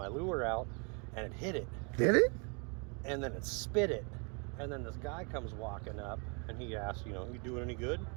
lure out, and it hit it. Did it? And then it spit it. And then this guy comes walking up, and he asked, you doing any good?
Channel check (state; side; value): quieter; left; 34.6 dB